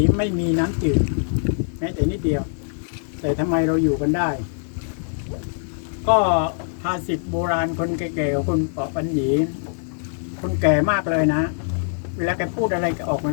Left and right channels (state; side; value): silent; right; digital silence